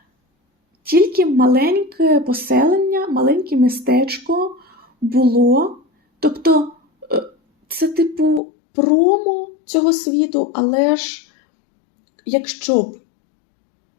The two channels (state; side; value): drops out; right; at 8.4 s